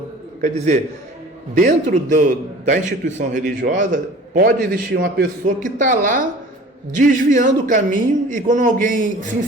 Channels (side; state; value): both; normal; correlation 0.44